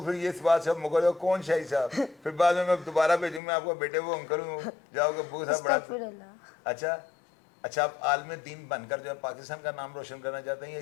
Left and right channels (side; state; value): right; drops out; at 3.4 s